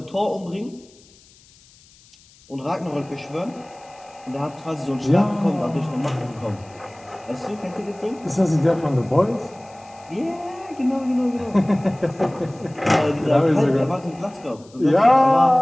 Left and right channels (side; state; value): left; noise; hiss, 27 dB below the sound